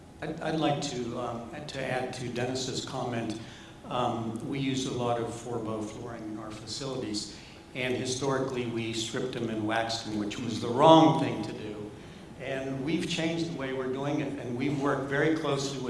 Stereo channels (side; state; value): both; identical; correlation 1.00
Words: I'd like to add to Dennis's comment. We use a lot of 4-bow flooring in our facilities, and historically we stripped them and waxed them, which was the wrong thing to do. And we've changed the way we're doing it, and we've worked very closely